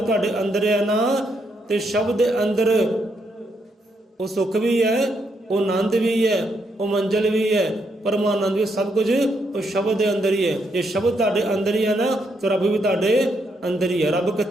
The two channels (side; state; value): both; normal; correlation 0.77